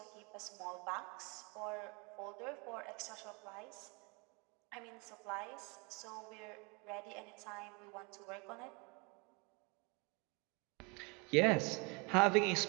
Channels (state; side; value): quieter; left; 30.3 dB